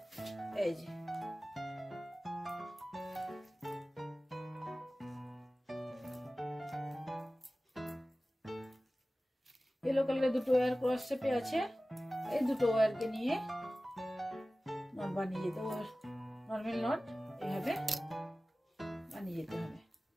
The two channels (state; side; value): normal; both; correlation 0.97